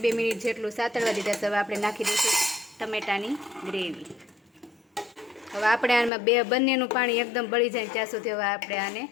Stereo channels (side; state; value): right; drops out; at 6.1 s